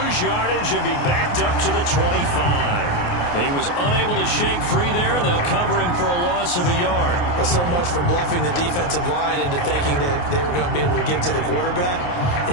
yardage and be backed up to the 25. He was unable to shake free there, and they'll cover him for a loss of a yard. Well, so much for bluffing the defensive line into thinking that they were going to be able to get to the quarterback.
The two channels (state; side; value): late; right; 28 ms